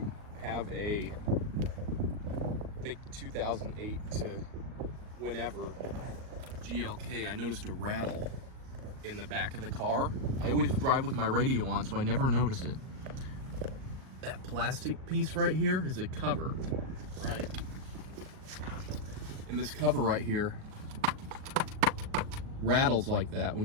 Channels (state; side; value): late; left; 38 ms